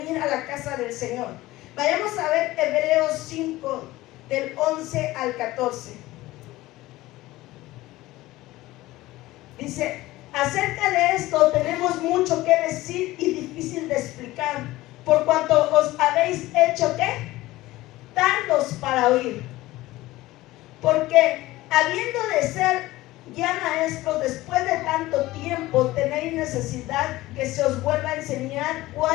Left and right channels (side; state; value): right; quieter; 17.8 dB